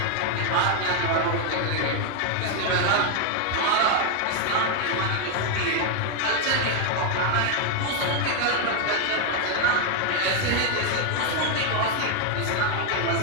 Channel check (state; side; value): different; both; correlation 0.00